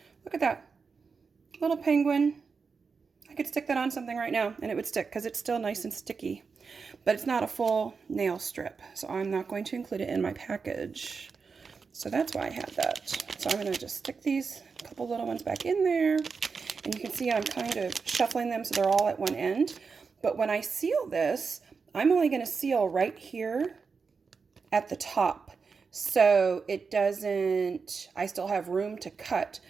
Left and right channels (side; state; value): left; quieter; 5.1 dB